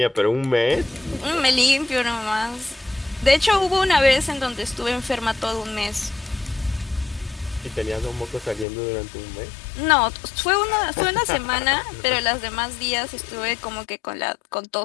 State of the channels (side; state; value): right; drops out; at 8.7 s